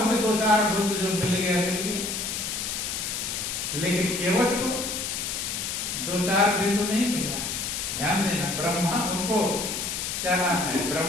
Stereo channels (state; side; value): noise; left; hiss, 3 dB below the sound